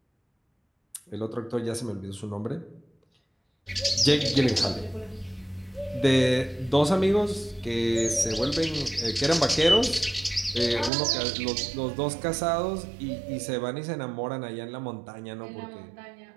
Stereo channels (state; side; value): drops out; left; at 10.9 s